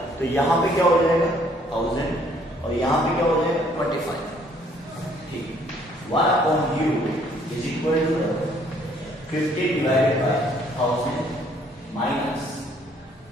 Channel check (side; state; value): both; normal; correlation 0.63